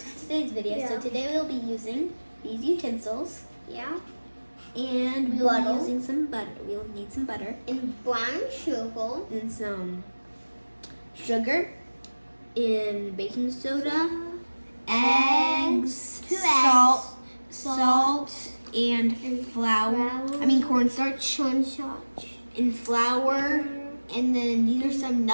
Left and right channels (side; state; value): both; inverted; correlation -1.00